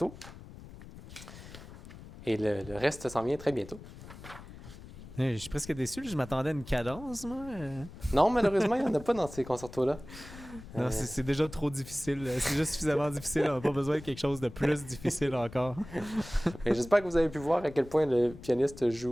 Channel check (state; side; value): noise; left; rumble, 16 dB below the sound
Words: Et le reste s'en vient très bientôt. Je suis presque déçu, je m'attendais à une cadence, moi. Non, malheureusement, il n'y en a pas dans ces concertos-là. Non, c'est déjà trop difficile. C'est déjà suffisamment difficile. On n'a pas besoin de quelque chose de plus difficile encore. Et j'espère que vous avez pu voir à quel point le pianiste